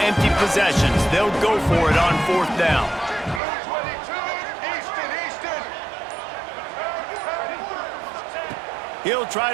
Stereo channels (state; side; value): drops out; left; at 3.4 s